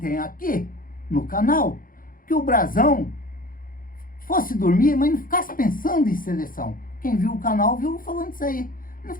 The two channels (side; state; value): right; late; 0.40 ms